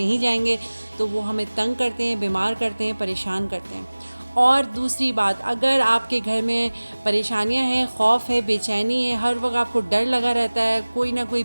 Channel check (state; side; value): inverted; both; correlation -1.00